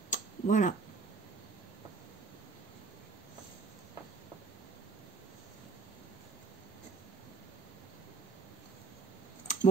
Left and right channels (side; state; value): left; quieter; 4.6 dB